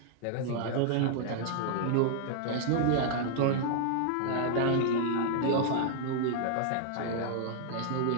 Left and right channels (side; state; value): both; different; correlation -0.01